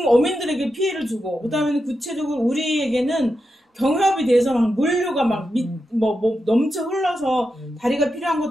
어민들에게 피해를 주고 그다음에는 구체적으로 우리에게는 경협이 돼서 막 물류가 막 넘쳐 흘러서 다리가 필요한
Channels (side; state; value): both; normal; correlation 0.88